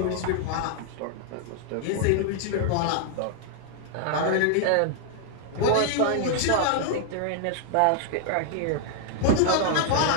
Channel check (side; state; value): both; different; correlation 0.00